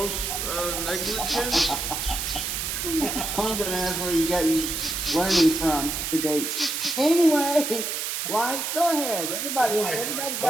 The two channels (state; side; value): noise; right; hiss, 2 dB below the sound